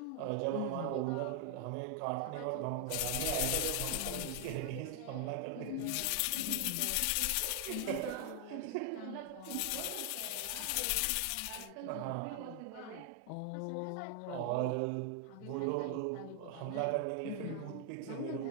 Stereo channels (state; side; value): different; both; correlation 0.00